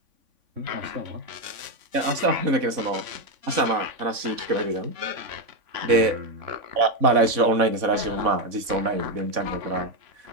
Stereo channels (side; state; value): left; late; 3.5 ms